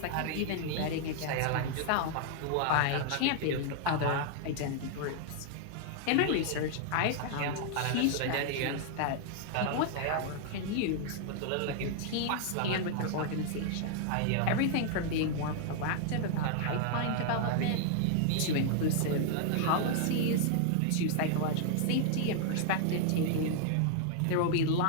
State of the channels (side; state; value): both; different; correlation 0.00